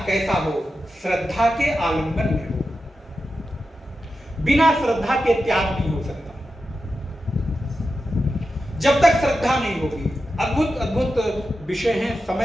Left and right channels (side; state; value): both; normal; correlation 0.90